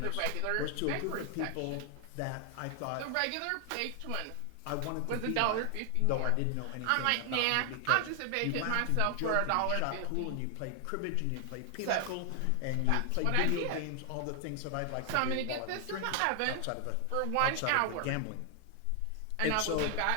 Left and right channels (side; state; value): both; different; correlation 0.00